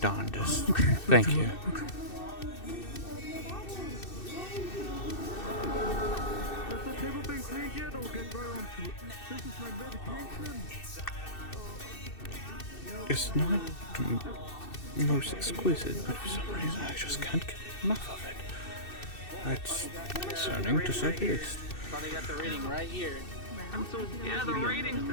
Thank you. It's not the most exquisite, but for some reason I just can't get enough of it. That's concerning, to say the least. They got the rating right here. Yeah, the rating's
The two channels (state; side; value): late; right; 2.6 ms